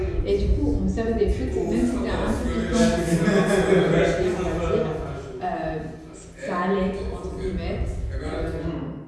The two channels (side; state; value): both; identical; correlation 1.00